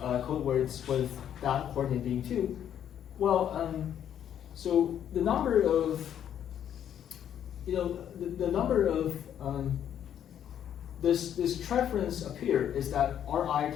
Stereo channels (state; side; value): quieter; right; 9.8 dB